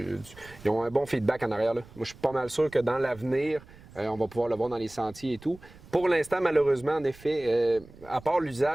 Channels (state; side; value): noise; right; rumble, 21 dB below the sound